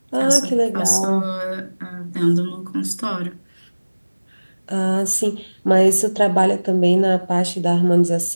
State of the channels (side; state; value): both; inverted; correlation -1.00